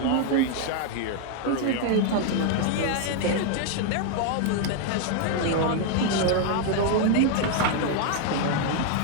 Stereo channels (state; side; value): different; both; correlation 0.00